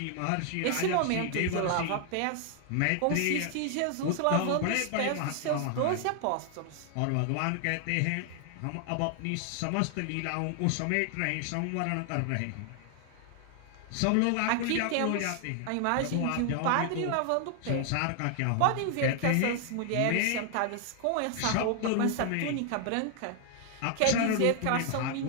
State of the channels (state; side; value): different; both; correlation 0.00